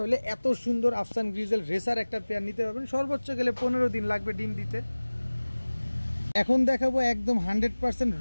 হলে এত সুন্দর আফসান গ্রিজেল রেসার একটা পেয়ার নিতে পারবেন। সর্বোচ্চ গেলে 15 দিন লাগবে ডিম দিতে। এখন দেখাবো একদম 100%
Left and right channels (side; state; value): both; inverted; correlation -1.00